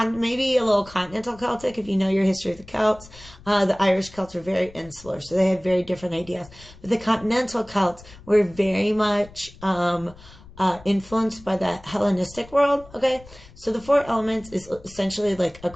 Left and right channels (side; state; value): left; noise; rumble, 21 dB below the sound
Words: maybe a little continental Celtic if you know your history of the Celts. The Irish Celts are very insular, so they have very different ideas. But the continental Celts were very much influenced by the Hellenistic world, okay? So the 4 elements is essentially like a